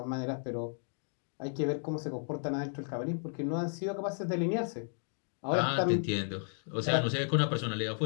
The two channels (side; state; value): right; silent; digital silence